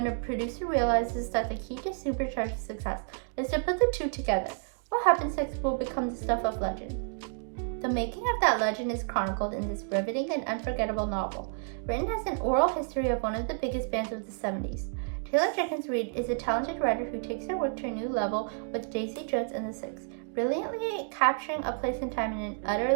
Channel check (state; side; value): silent; left; 58 dB below the other